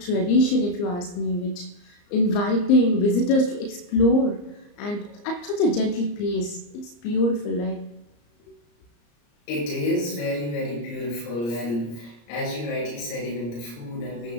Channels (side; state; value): right; late; 34 ms